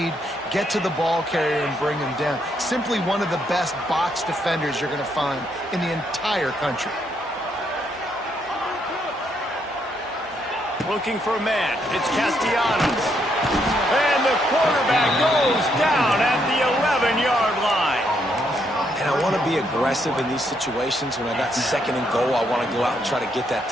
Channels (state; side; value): normal; both; correlation 0.75